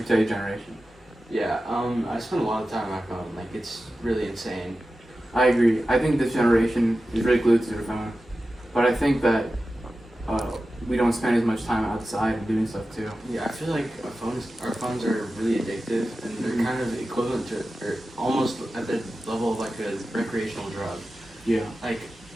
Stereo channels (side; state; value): both; normal; correlation 0.94